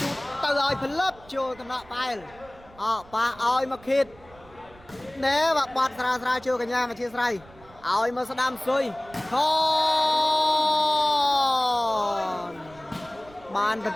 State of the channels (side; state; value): right; noise; rumble, 24 dB below the sound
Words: tao rồi phân lớp cho tao nọ bay ba oi mà khít nè và bọt ra chưa cả nhà mà chia sài oi mà đam xuôi con bàn bật